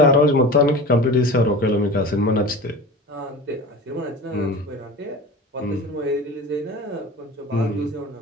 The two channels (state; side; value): normal; both; correlation 0.34